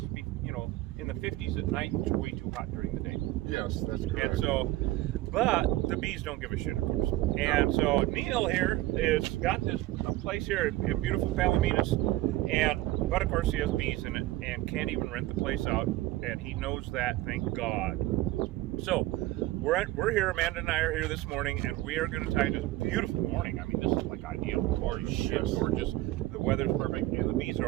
to be, you know, in the 50s at night. It's way too hot during the day. Yes, that's correct. And so, but the bees don't give a shit, of course. And so Neil here is got this place here in beautiful Palominas, but of course he has bees in it and can't even rent the place out, and he knows that, thank God. So we're here. Amanda and I are here this morning, and we are going to tie this beautiful morning. I mean, this is like ideal. Holy shit, gorgeous. The weather's perfect, and the bees are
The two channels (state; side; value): quieter; left; 17.2 dB